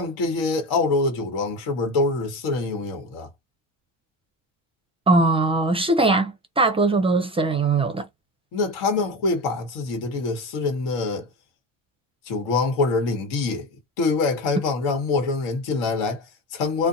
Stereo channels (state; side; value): normal; both; correlation 0.26